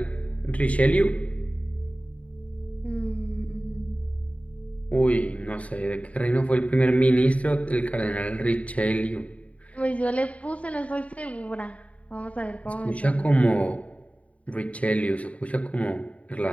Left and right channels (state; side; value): late; right; 0.066 ms